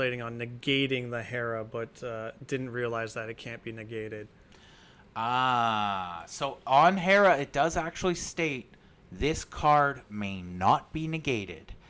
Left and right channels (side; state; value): both; identical; correlation 1.00